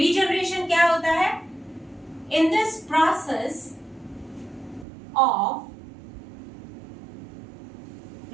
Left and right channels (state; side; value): drops out; left; at 4.9 s